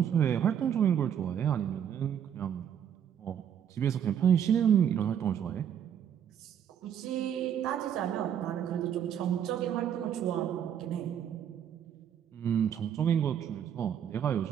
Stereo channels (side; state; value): left; quieter; 9.0 dB